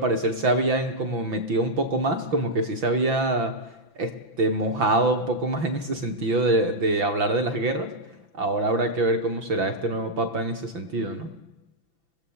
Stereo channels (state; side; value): late; left; 6.0 ms